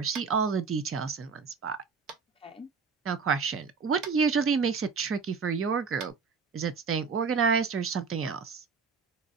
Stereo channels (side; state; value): left; quieter; 5.4 dB